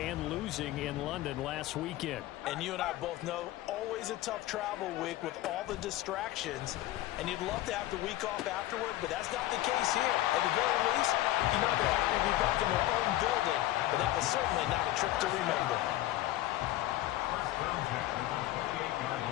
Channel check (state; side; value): quieter; right; 15.5 dB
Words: losing in London last weekend. And you and I both know, always a tough travel week with all the distractions. And you'd love to have the week off afterward, but that's not the case here. At the very least, you know they're happy to be back in their own building, but that was certainly not a trip to remember.